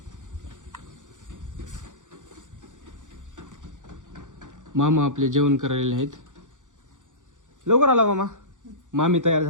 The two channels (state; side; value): late; left; 0.86 ms